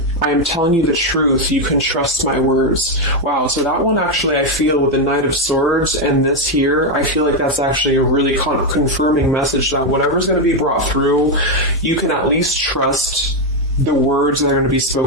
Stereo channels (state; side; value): normal; both; correlation 0.04